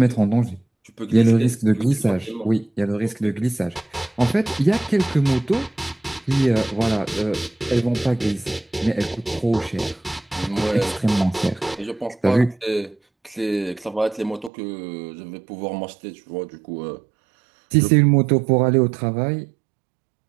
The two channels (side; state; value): left; drops out; at 14.5 s